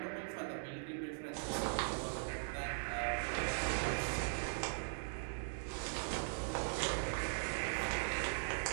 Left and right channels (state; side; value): silent; left; digital silence